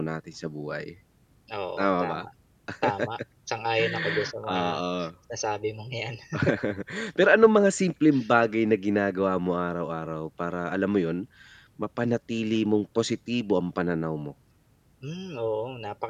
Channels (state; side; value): identical; both; correlation 1.00